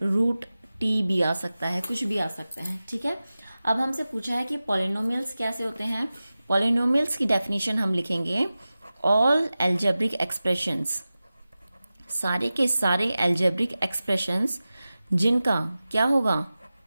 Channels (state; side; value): inverted; both; correlation -0.96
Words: √t भी आ सकता है, कुछ भी आ सकता है। ठीक है, अब हमसे पूछा है कि पॉलिनोमियल्स कैसे होते हैं। पॉलिनोमियल्स की डेफिनेशन हम लिखेंगे, ऑल एल्जेब्रिक एक्सप्रेशंस, सारे के सारे एल्जेब्रिक एक्सप्रेशंस जिनका क्या होगा,